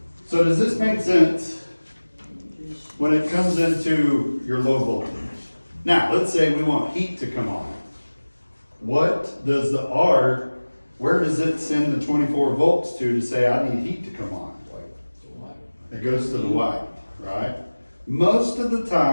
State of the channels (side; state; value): both; inverted; correlation -1.00